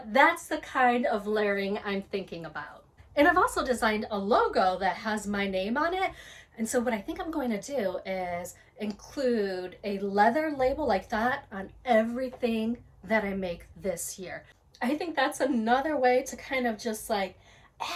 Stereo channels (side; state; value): both; identical; correlation 1.00